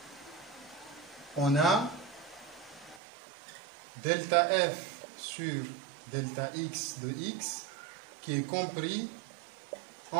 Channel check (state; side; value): drops out; left; at 3.0 s